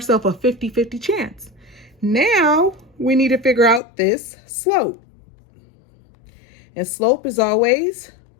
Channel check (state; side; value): drops out; right; at 3.8 s